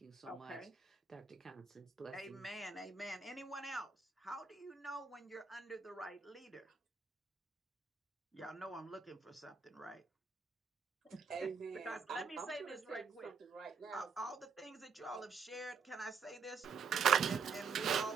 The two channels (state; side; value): quieter; left; 5.4 dB